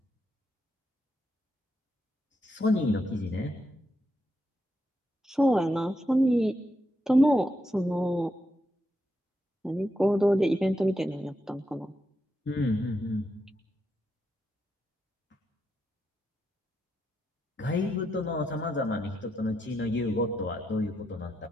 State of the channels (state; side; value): normal; both; correlation 0.83